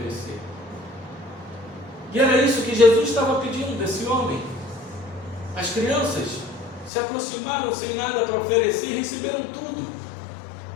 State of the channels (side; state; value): right; drops out; at 6.9 s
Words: E era isso que Jesus estava pedindo desse homem. As crianças se aproximaram sem nada para oferecer e receberam tudo.